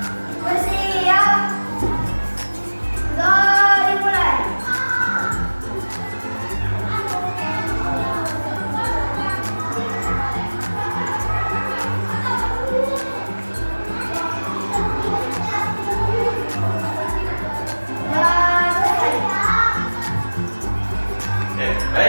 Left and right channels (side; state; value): both; inverted; correlation -1.00